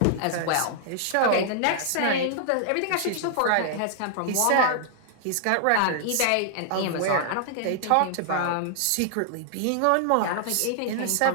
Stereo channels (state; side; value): different; both; correlation -0.01